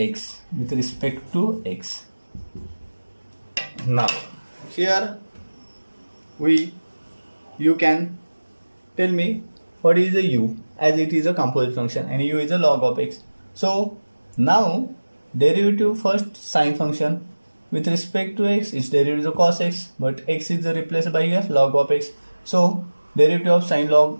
with respect to x. Now here you can tell me what is a u, as it is a composite function and u is a log of x. So now derivative first sine function with respect to x, its derivative is a cos x, but x is replaced by here log of x. So derivative of sine log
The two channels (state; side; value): inverted; both; correlation -1.00